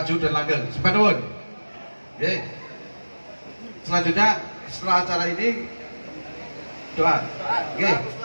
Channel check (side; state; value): both; inverted; correlation -1.00